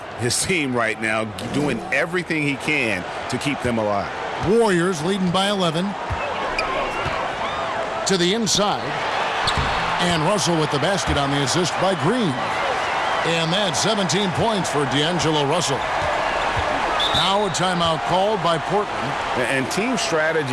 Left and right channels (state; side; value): identical; both; correlation 1.00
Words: his team right now, doing everything he can to keep them alive. Warriors leading by 11. To the inside. And Russell with the basket on the assist by Green. And that's 17 points for D'Angelo Russell. Now a timeout called by Portland. And team